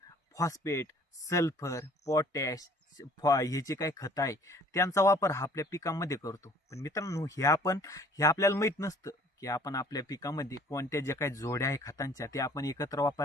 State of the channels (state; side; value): normal; both; correlation 0.53